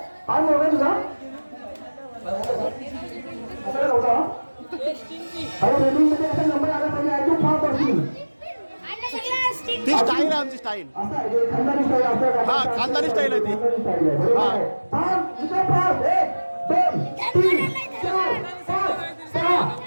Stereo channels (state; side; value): inverted; both; correlation -1.00